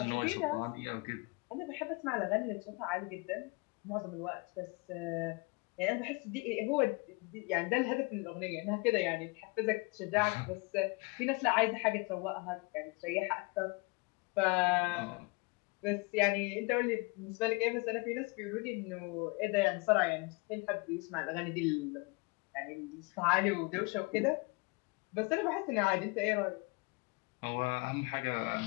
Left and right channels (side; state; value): right; quieter; 28.7 dB